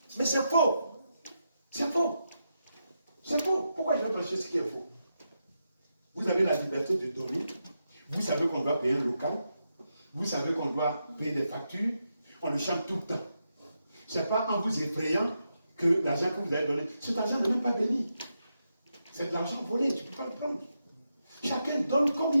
Mais c'est faux. C'est faux. C'est faux. Pourquoi je vais prêcher ce qui est faux? Vous avez la liberté de donner. Vous savez qu'on doit payer un local. Vous savez qu'on doit payer des factures. On le chante tout le temps. Ce n'est pas en vous effrayant que l'argent que vous allez donner, cet argent n'est même pas béni. C'est de l'argent volé, tu ne peux pas le prendre. Chacun donne comme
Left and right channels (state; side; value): inverted; both; correlation -0.85